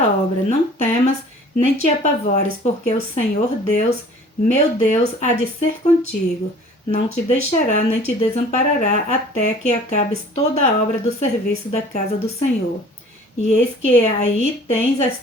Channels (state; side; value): normal; both; correlation 0.48